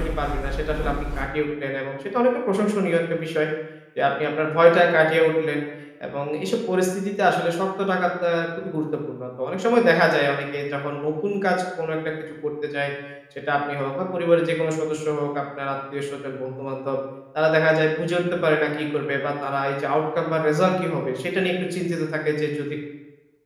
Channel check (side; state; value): both; identical; correlation 1.00